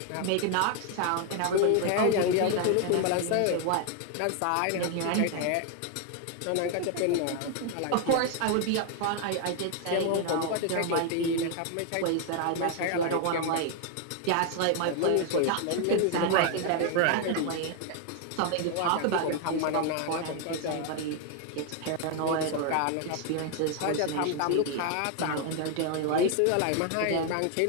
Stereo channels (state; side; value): different; both; correlation 0.00